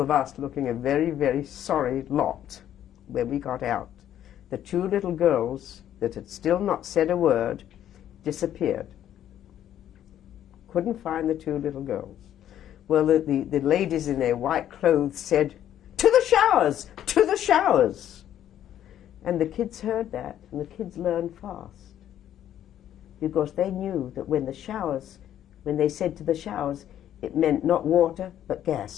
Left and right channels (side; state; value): right; quieter; 11.0 dB